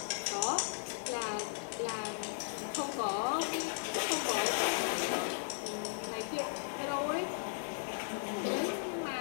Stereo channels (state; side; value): silent; right; 54 dB below the other